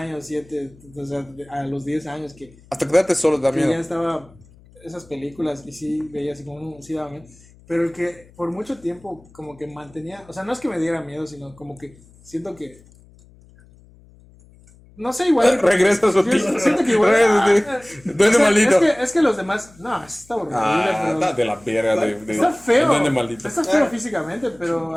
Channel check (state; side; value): noise; left; hum, 26 dB below the sound